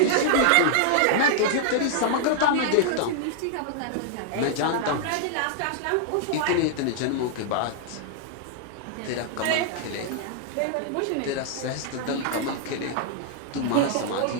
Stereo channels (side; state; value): both; different; correlation -0.01